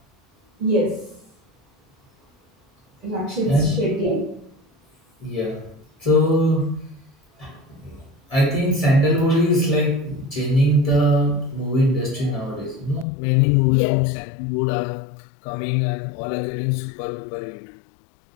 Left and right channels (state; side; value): drops out; right; at 13.1 s